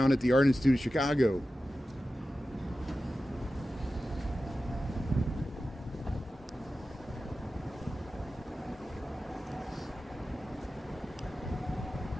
at the Art Institute of Chicago.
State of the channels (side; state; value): both; normal; correlation 0.94